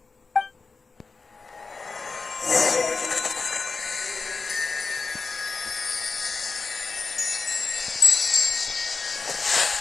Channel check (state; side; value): quieter; right; 4.4 dB